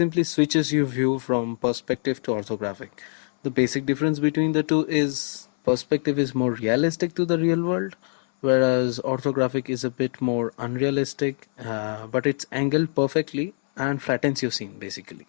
switches your view from perspective to orthographic. The basic difference between the two is perspective is more realistic to the real world, whereas orthographic is a bit more unrealistic, but it's angled perfectly and flattens your scene basically.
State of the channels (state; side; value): silent; right; 62 dB below the other